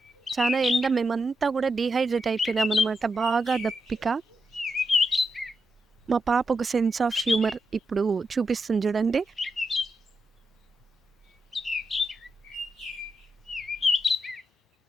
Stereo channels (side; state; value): both; normal; correlation 0.86